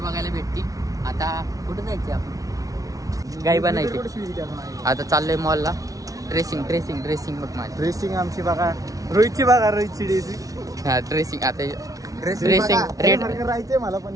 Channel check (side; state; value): left; late; 0.17 ms